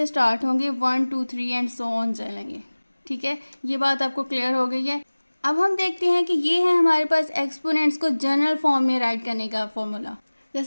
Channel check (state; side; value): inverted; both; correlation -1.00